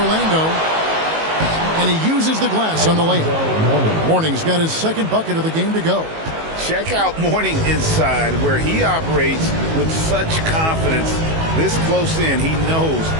And he uses the glass on the layup. Mourning's got his second bucket of the game to go. Check out Mourning inside, where he operates with such confidence. This close in, he knows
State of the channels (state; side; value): late; left; 19 ms